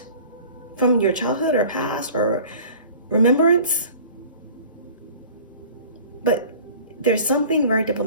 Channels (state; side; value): inverted; both; correlation -0.45